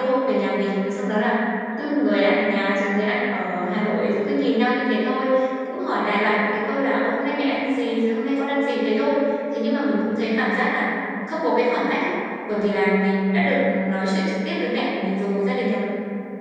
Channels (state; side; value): identical; both; correlation 1.00